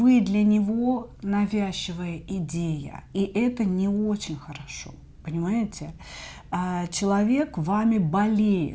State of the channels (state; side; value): identical; both; correlation 1.00